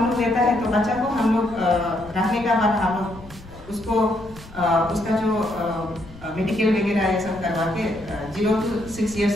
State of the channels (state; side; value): noise; left; rumble, 19 dB below the sound